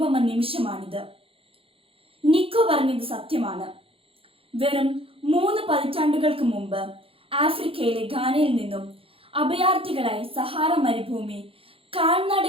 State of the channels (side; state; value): left; late; 0.27 ms